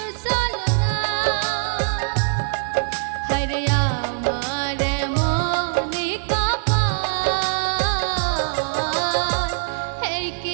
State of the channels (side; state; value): left; silent; digital silence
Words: ছলনা। হায়রে আমার